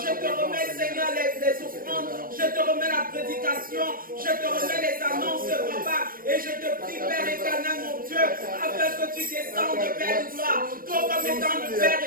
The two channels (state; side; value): late; left; 0.41 ms